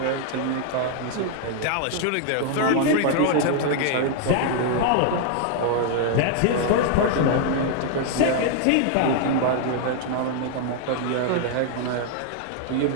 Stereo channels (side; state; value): both; different; correlation 0.00